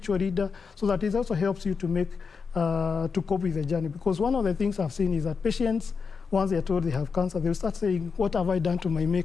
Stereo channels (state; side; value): quieter; right; 5.4 dB